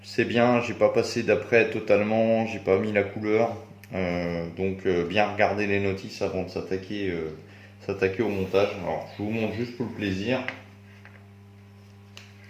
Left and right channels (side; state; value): both; identical; correlation 1.00